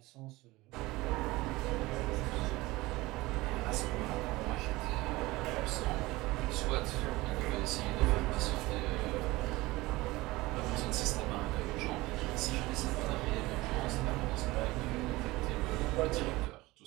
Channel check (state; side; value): quieter; left; 20.3 dB